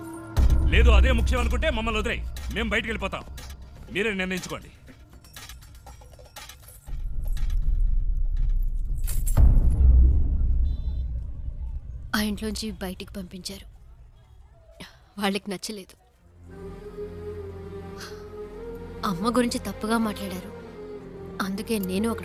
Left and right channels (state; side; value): identical; both; correlation 1.00